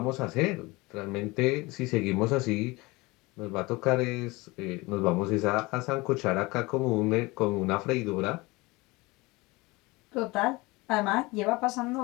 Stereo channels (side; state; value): right; quieter; 23.0 dB